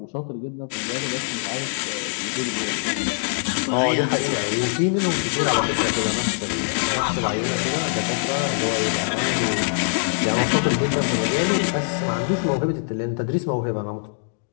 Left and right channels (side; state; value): right; silent; digital silence